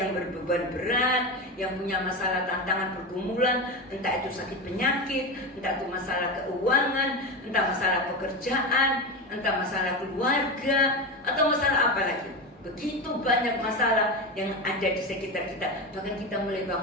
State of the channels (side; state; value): both; normal; correlation 0.20